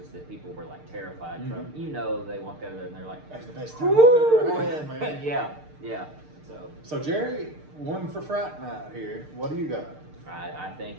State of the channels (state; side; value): late; left; 6.6 ms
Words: that people were like terrified from, they walk out of there and they're like, That's the best time I've ever had, man. yeah. So Jerry, one for Fright Night here. What do you got? I think